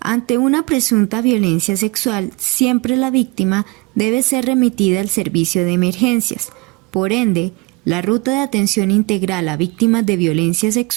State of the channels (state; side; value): quieter; left; 26.1 dB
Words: una presunta violencia sexual, siempre la víctima debe ser remitida al servicio de emergencias. Por ende, la ruta de atención integral a víctimas de violencia